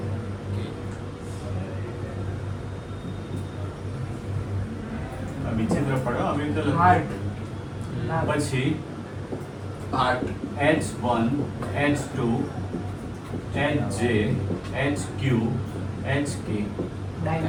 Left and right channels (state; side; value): identical; both; correlation 1.00